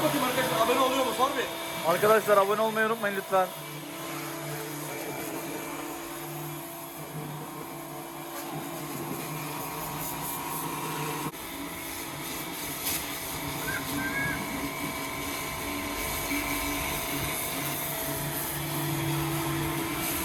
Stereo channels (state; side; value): identical; both; correlation 1.00